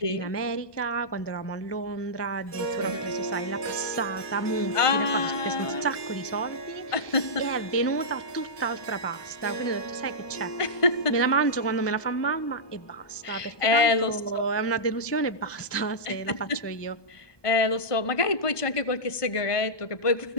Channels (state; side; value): late; right; 1.2 ms